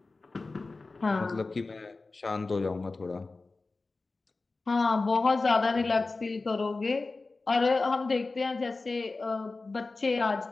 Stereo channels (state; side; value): quieter; right; 3.6 dB